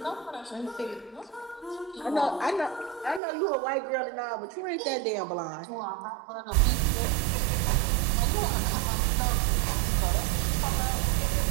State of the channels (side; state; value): left; drops out; at 3.2 s